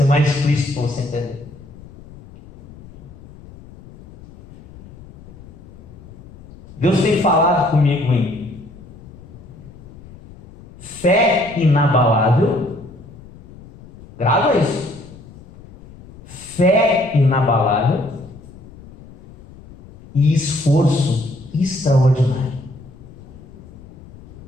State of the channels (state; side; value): noise; left; rumble, 20 dB below the sound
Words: mais explícito para você entender. Deus tem falado comigo em fé inabalável Grava isso. Fé inabalável e esforço extraordinário.